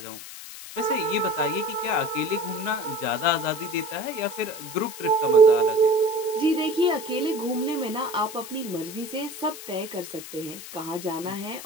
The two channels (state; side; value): noise; left; hiss, 13 dB below the sound